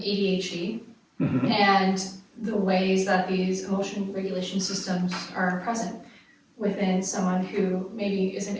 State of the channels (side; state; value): both; identical; correlation 1.00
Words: and the ways that these emotion regulation systems are present within someone who maybe isn't